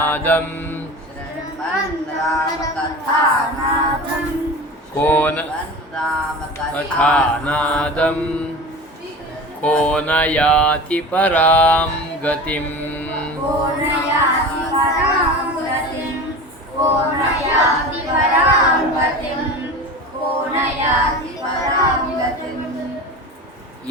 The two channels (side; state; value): both; normal; correlation 0.33